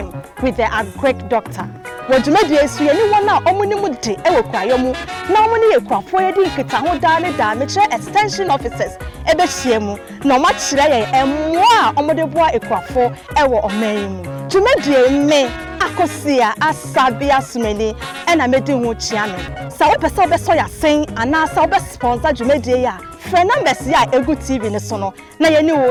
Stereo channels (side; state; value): both; identical; correlation 1.00